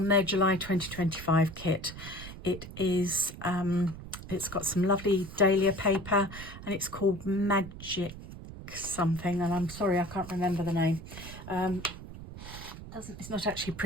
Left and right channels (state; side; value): noise; right; rumble, 13 dB below the sound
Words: their July 2025 kit. It is, it's got some lovely dahlia paper and it's called Magic something, and I'm sorry I can't remember the name. It's not actually